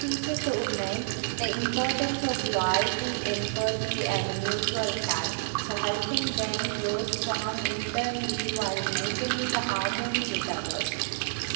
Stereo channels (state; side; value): silent; left; digital silence